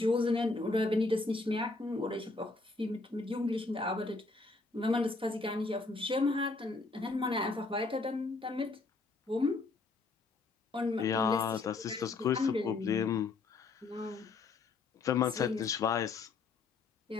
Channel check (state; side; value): quieter; right; 3.8 dB